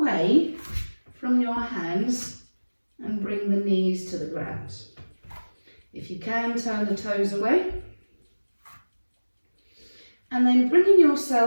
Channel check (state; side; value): inverted; both; correlation -1.00